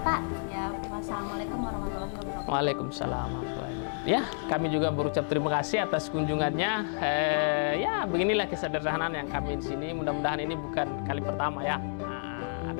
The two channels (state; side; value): silent; right; digital silence